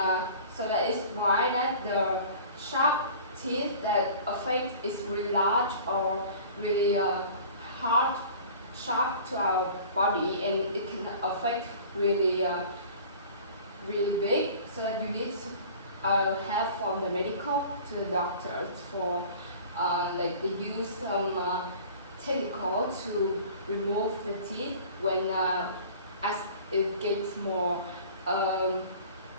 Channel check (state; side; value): inverted; both; correlation -0.44